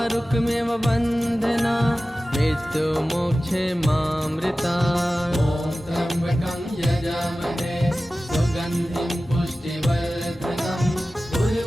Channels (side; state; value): both; normal; correlation 0.96